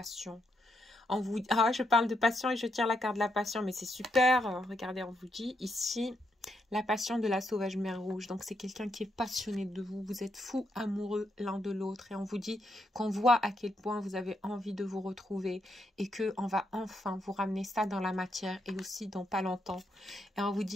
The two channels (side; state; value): both; normal; correlation 0.79